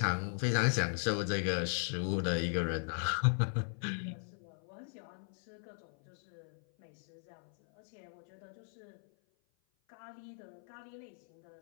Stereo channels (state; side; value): silent; right; 53 dB below the other